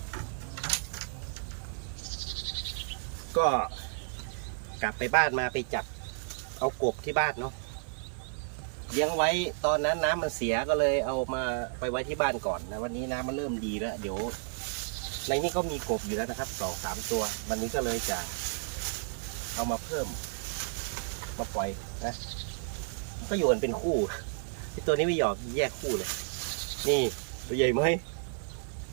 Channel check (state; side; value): silent; left; 56 dB below the other